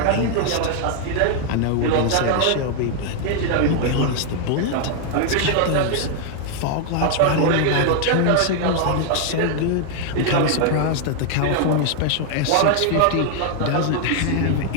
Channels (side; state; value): both; different; correlation 0.00